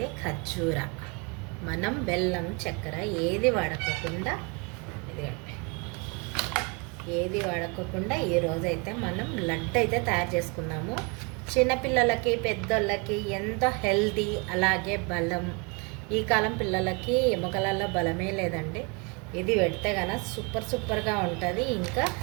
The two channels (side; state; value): left; quieter; 31.7 dB